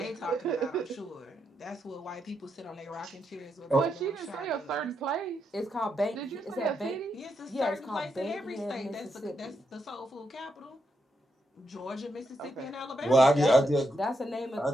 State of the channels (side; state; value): both; normal; correlation 0.82